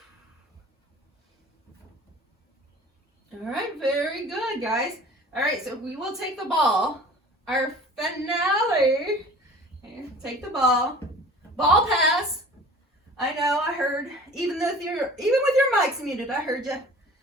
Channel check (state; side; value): normal; both; correlation 0.44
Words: All right, very good, guys. All right, so we will take the ball. Our finale. Here, take the ball. Ball pass. I know, I heard. Even with your mics muted, I heard you.